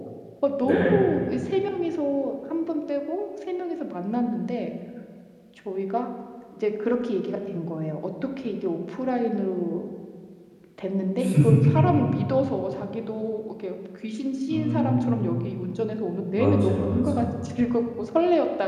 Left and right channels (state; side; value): identical; both; correlation 1.00